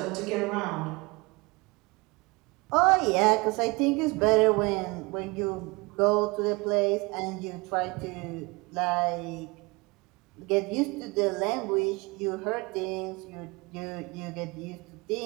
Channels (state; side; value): quieter; left; 25.7 dB